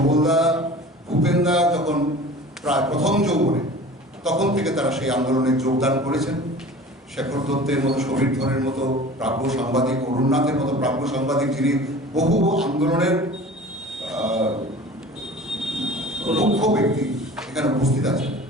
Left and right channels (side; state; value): both; normal; correlation 0.41